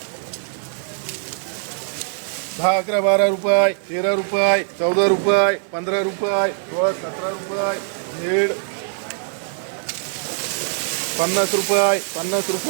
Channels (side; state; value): left; silent; 64 dB below the other